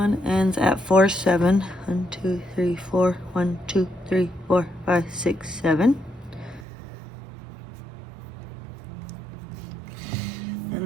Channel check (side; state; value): left; drops out; at 6.7 s